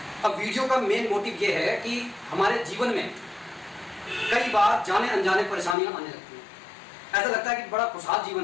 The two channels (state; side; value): drops out; right; at 5.8 s